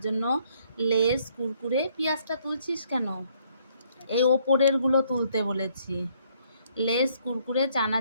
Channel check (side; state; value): both; inverted; correlation -0.67